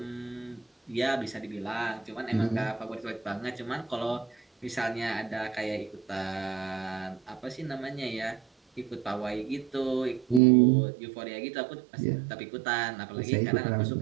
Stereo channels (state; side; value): drops out; left; at 10.4 s